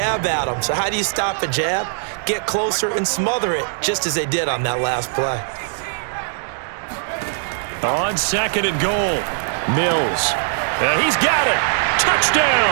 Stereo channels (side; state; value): left; silent; digital silence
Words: at him. So how do you stop a jab? Get closer and smother it, just as they did on that last play. On 2nd and goal, Mills. And he's got it.